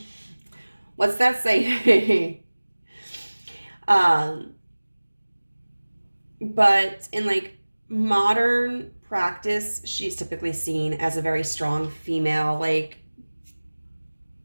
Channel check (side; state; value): both; inverted; correlation -1.00